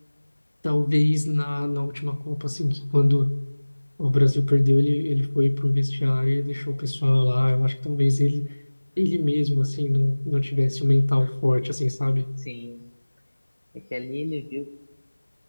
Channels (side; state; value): both; inverted; correlation -1.00